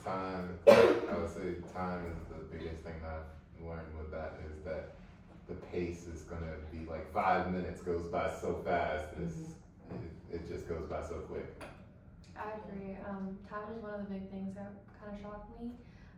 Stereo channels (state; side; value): identical; both; correlation 1.00